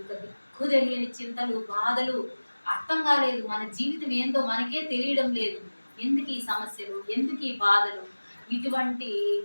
దిక్కు తెలియని చింతలు, బాధలు, అర్థం కాలేదు, మన జీవితం ఏందో మనకే తెలియడం లేదు, ఎందుకు ఈ సమస్యలు, ఎందుకు ఈ బాధలు, ఇటువంటి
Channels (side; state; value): both; inverted; correlation -1.00